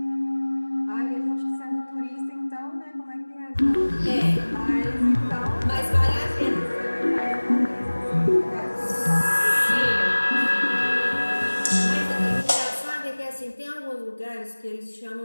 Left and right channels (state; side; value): inverted; both; correlation -1.00